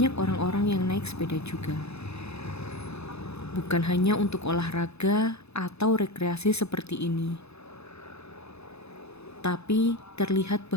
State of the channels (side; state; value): right; late; 0.79 ms